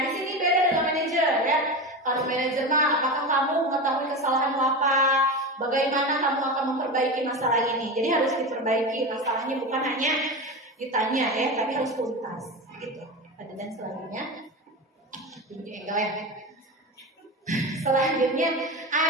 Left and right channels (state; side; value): normal; both; correlation 0.23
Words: di sini beda dengan manajer ya. Kalau manajer mah, apakah kamu mengetahui kesalahanmu apa? Bagaimana kamu akan memperbaiki masalah ini? Jadi harus diperbaiki masalahnya, bukan hanya ditanya ya, tapi harus tuntas. Gitu. Dan selanjutnya, selanjutnya